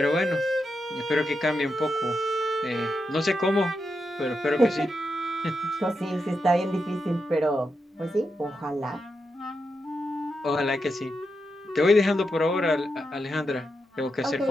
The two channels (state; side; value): normal; both; correlation 0.86